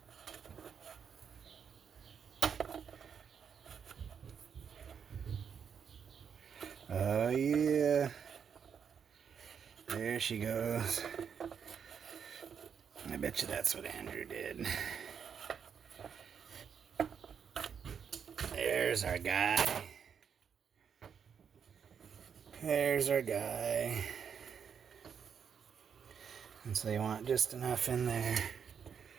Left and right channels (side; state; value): left; quieter; 7.2 dB